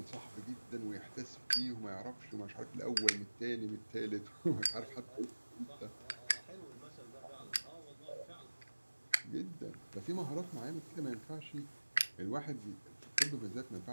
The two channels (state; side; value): inverted; both; correlation -1.00